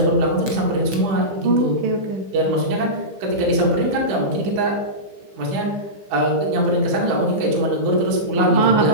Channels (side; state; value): left; late; 15 ms